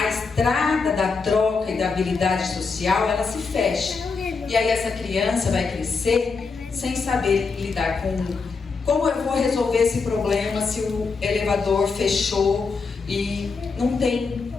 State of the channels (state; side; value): quieter; right; 4.7 dB